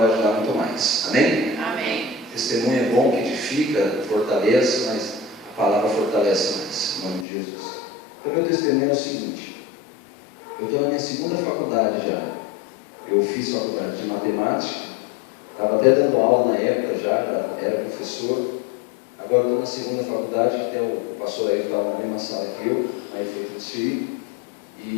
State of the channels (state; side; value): drops out; right; at 7.2 s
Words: ajudar muito mais. Amém? Amém. Testemunho é bom, que edifica, fortalece, mas a palavra fortalece mais. Em nome de Jesus. Então, meu testemunho é o seguinte: eu estou na minha segunda faculdade já. Eu fiz faculdade de matemática, estava até dando aula na época já era professor. Agora estou na segunda faculdade, que até o pastor aí estava na mesma sala que eu, aí foi transferido.